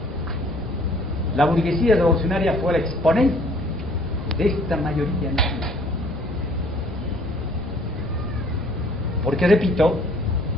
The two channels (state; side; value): normal; both; correlation 0.57